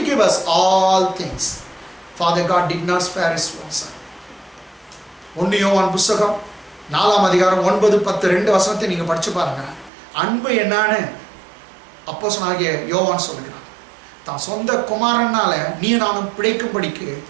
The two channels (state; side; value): drops out; left; at 9.9 s